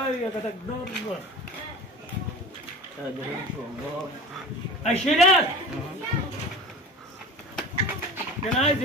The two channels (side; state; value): both; normal; correlation 0.36